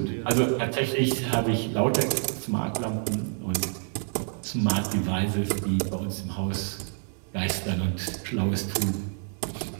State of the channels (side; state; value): left; silent; 57 dB below the other